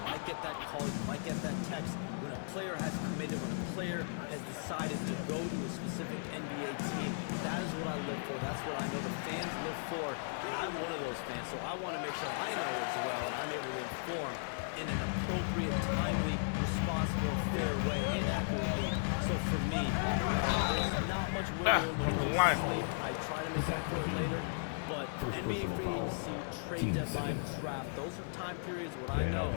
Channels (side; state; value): right; silent; 54 dB below the other